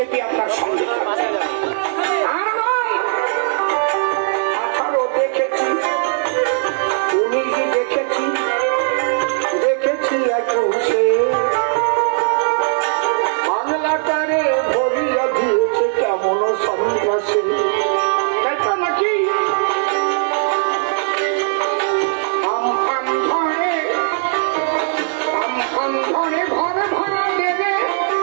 আপনার সঙ্গে আর নয়। 18 দেখেছি, 19 দেখেছি, দেখেছি 21-এ বাংলাটারে ভরিয়া দিয়েছে কেমন সন্ত্রাসী। তাই তো নাকি? আমফান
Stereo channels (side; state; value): left; silent; 67 dB below the other